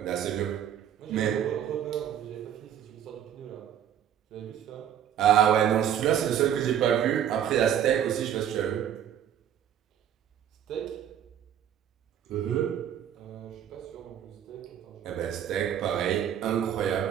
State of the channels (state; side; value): quieter; left; 9.9 dB